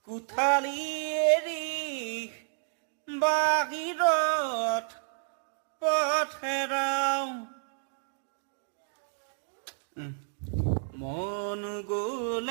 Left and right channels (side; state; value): left; silent; digital silence